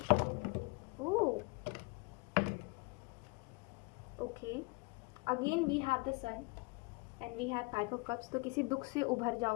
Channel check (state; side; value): quieter; right; 27.9 dB